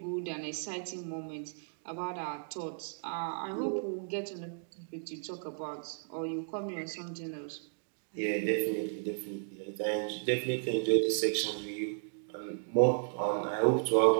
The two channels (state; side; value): silent; left; digital silence